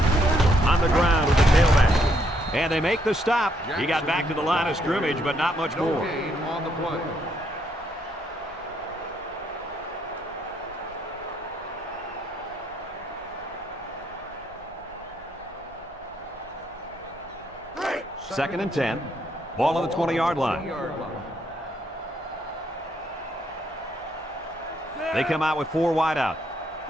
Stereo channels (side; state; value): both; normal; correlation 0.73